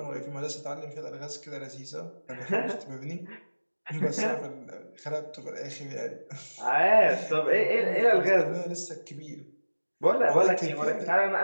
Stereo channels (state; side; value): inverted; both; correlation -1.00